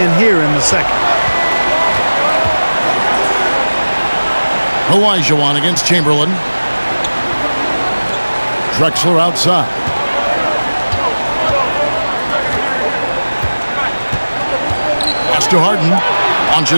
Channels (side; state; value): both; inverted; correlation -1.00